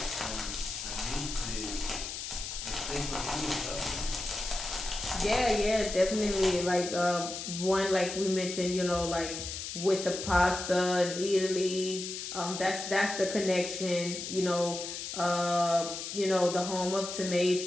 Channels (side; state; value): left; noise; hiss, 6 dB below the sound